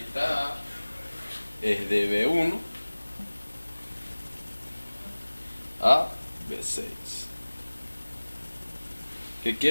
A, es de B1 a B6. ¿Qué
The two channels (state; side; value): inverted; both; correlation -1.00